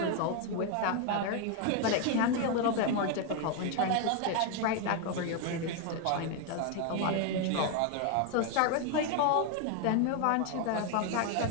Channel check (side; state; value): both; different; correlation 0.01